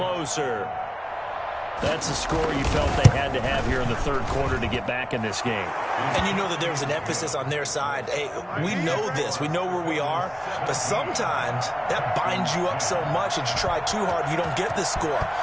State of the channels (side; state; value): both; identical; correlation 1.00